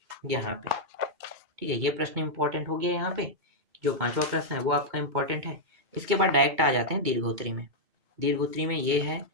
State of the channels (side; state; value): left; late; 2.2 ms